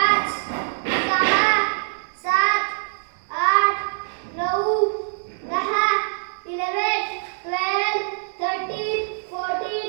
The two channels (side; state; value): left; silent; digital silence